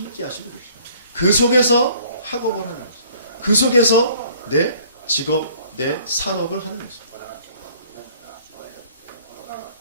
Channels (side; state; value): both; inverted; correlation -0.56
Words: 하시고 계십니다. 그 속에서 학업을 하는 것입니다. 그 속에서 내 직업, 내 산업을 하는 것입니다.